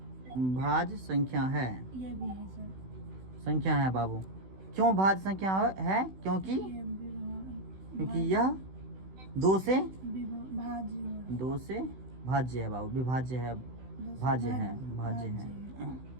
संख्या है। ये भी है सर। संख्या है बाबू। क्यों भाज्य संख्या है? क्योंकि यह 2 से भाज्य है बाबू। विभाज्य है, भाज्य है।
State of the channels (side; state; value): left; late; 16 ms